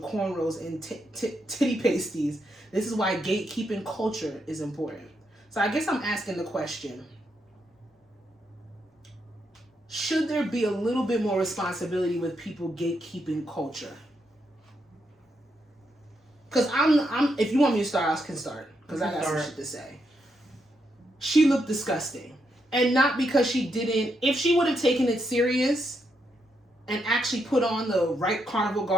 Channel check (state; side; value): normal; both; correlation 0.80